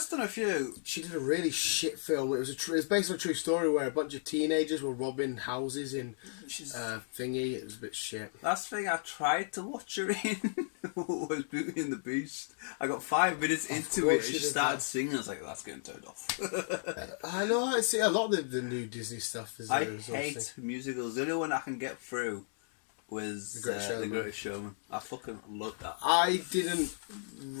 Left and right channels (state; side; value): silent; right; digital silence